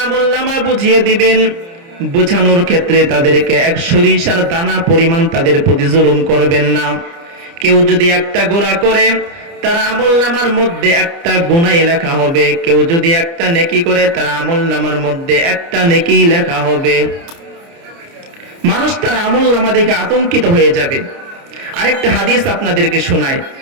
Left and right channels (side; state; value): left; late; 29 ms